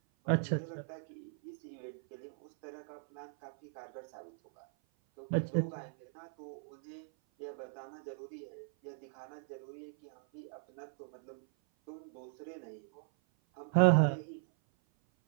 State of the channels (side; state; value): left; silent; 52 dB below the other